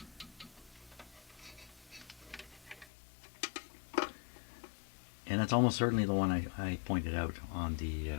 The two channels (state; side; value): drops out; right; at 2.9 s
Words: And it's almost certainly the one I pointed out on